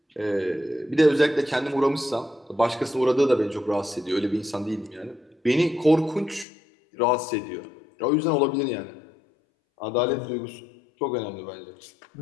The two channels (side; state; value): right; drops out; at 6.5 s